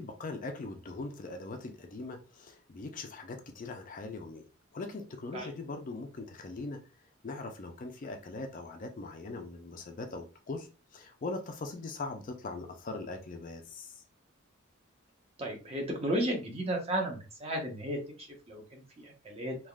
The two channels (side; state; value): both; normal; correlation 0.35